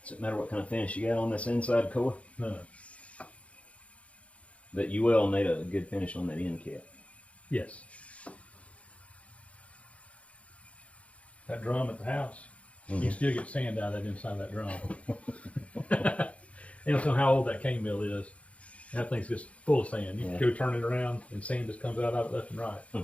Does it matter what kind of finish you got on this inside core? No. But you will need a good finish on that end cap. Yes. That drum at the house, you can still get sand out of that inside of that drum. You don't know how old that cane mill is. That thing's just full of sand. You can go turn it around and sand just comes out of it left and right.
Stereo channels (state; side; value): late; right; 0.064 ms